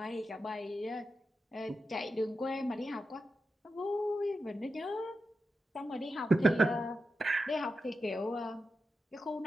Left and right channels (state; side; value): normal; both; correlation 0.89